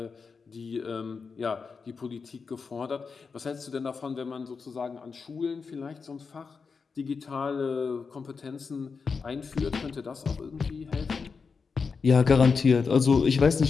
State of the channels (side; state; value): right; quieter; 5.1 dB